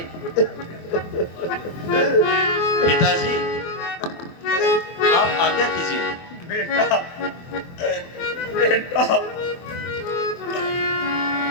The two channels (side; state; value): right; late; 23 ms